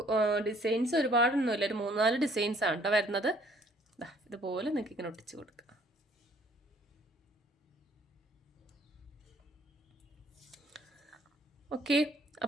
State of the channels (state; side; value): normal; both; correlation 0.60